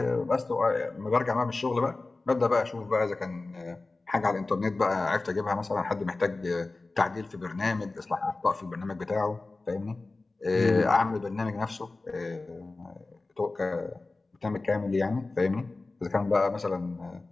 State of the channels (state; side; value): quieter; right; 3.4 dB